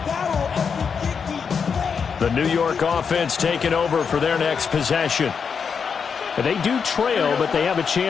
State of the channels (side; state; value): right; quieter; 6.2 dB